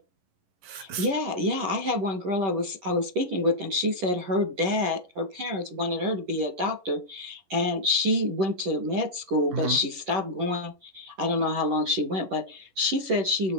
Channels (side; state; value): left; late; 11 ms